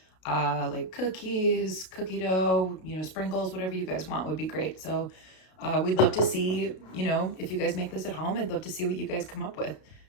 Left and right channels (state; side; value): late; right; 32 ms